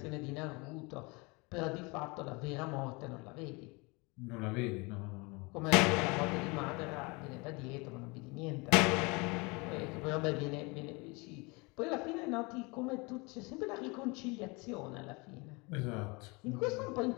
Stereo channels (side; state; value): right; quieter; 27.4 dB